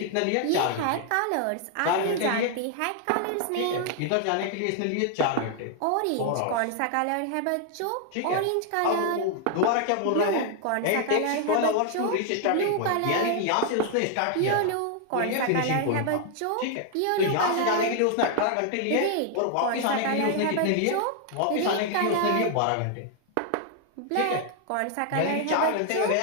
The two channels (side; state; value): both; different; correlation 0.00